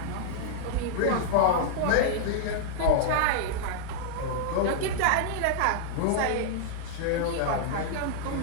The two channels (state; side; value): different; both; correlation -0.01